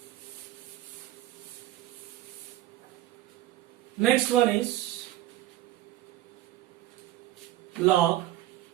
next one is log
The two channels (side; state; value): left; quieter; 14.5 dB